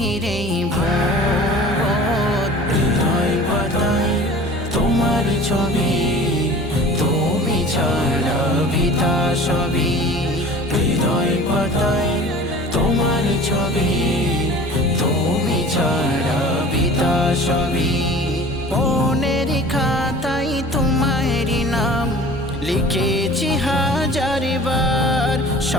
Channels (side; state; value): both; normal; correlation 0.43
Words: এই ভুবন। হৃদয় পাতায় তোমার ছবি, তুমি ছাড়া বিতা সবই। হৃদয় পাতায় তোমার ছবি, তুমি ছাড়া বিতা সবই। মনের খাতায় তোমারই নাম লিখেছি হাজার বার,